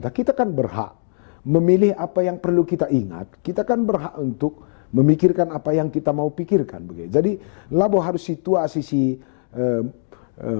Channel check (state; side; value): silent; right; 65 dB below the other